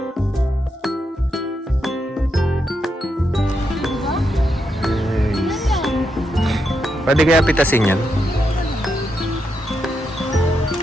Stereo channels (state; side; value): normal; both; correlation 0.83